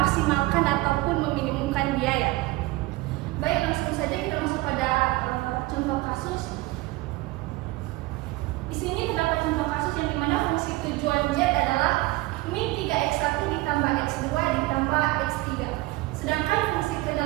ataupun meminimumkan biaya. Baik, langsung saja kita masuk pada contoh kasus. Di sini terdapat contoh kasus yang dimana fungsi tujuan Z adalah min 3x1 ditambah x2 ditambah x3. Sedangkan fungsi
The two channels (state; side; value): quieter; left; 20.0 dB